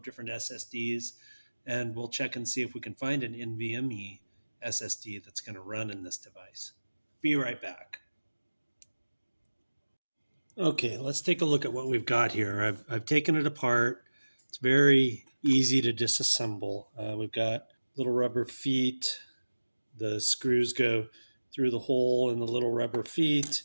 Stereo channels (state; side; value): inverted; both; correlation -1.00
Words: different SSDs, and we'll check and see if we can find an NVMe SSD that's going to run in this device. Be right back. Okay, let's take a look at what we've got here. I've taken it apart. It's very easy to disassemble. We've got little rubber feet. The screws go through the hole in the little rubber feet.